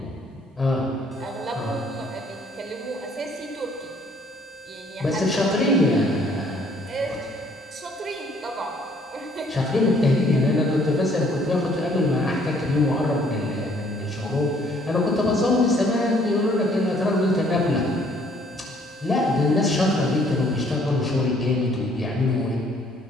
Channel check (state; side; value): normal; both; correlation 0.62